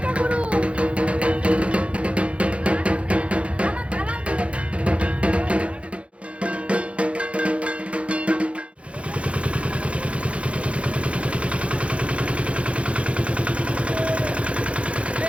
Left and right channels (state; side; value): late; left; 0.061 ms